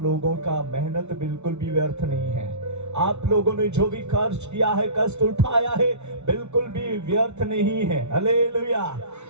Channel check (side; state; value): left; late; 0.82 ms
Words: लोगों का मेहनत बिल्कुल भी व्यर्थ नहीं है। आप लोगों ने जो भी कष्ट किया है, कष्ट उठाया है, बिल्कुल भी व्यर्थ नहीं है। हालेलुया।